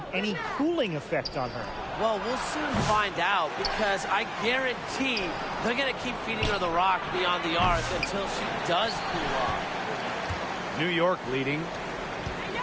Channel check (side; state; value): both; identical; correlation 1.00